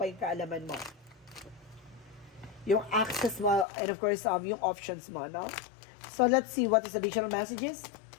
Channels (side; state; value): right; drops out; at 3.7 s